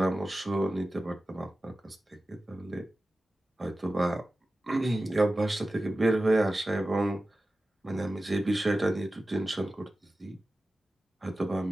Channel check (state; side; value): normal; both; correlation 0.95